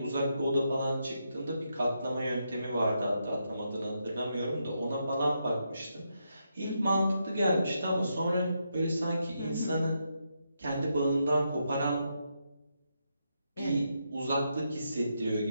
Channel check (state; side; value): inverted; both; correlation -0.82